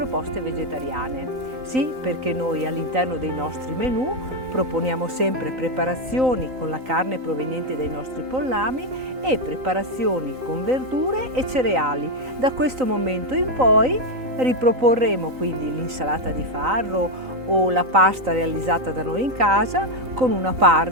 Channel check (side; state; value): left; late; 3.9 ms